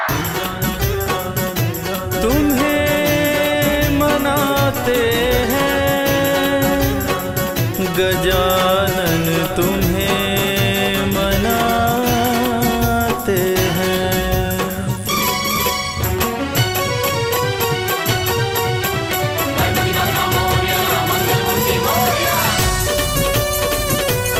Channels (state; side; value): identical; both; correlation 1.00